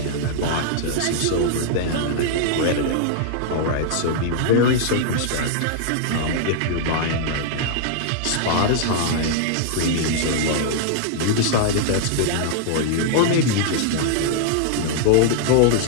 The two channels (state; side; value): different; both; correlation -0.01